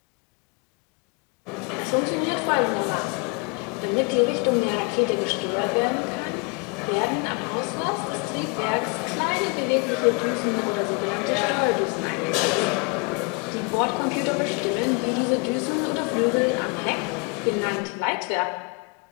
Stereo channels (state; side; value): quieter; right; 33.0 dB